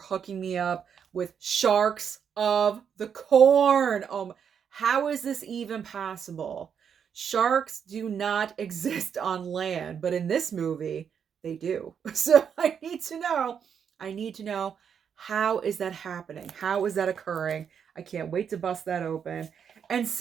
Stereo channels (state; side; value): quieter; left; 7.5 dB